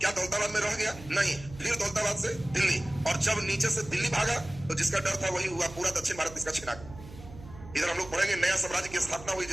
दौलताबाद में रह गया? नहीं, फिर दौलताबाद से दिल्ली, और जब नीचे से दिल्ली भागा तो जिसका डर था वही हुआ, पूरा दक्षिण भारत इसका छिना गया। इधर हम लोग पढ़ेंगे नया साम्राज्य की स्थापना हुई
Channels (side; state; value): right; noise; hum, 16 dB below the sound